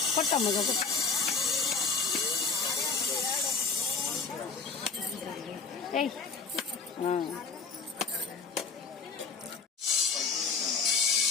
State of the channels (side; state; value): right; quieter; 4.8 dB